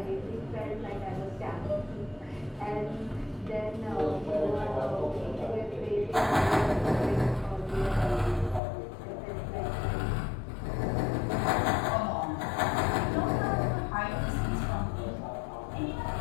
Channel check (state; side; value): drops out; right; at 8.6 s